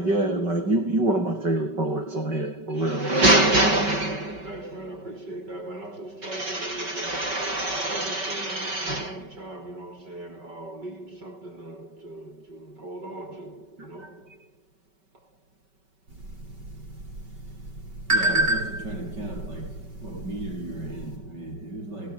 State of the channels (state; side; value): late; left; 5.2 ms